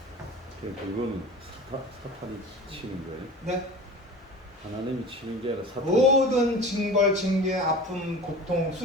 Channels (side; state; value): both; normal; correlation 0.36